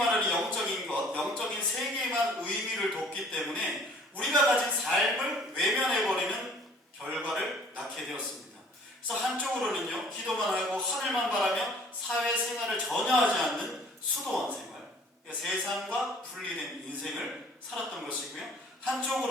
영적인 것, 영적인 세계에만 의미를 뒀기 때문에 우리가 가진 삶을 외면해버리는 결과를 낳게 되었습니다. 그래서 한쪽으로는요, 기도만 하고 하늘만 바라며 사회생활을 전혀 하지 않는 수도원 생활, 그러니까 세상과 분리된 인생을 살았던 것이고요.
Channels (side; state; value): both; normal; correlation 0.54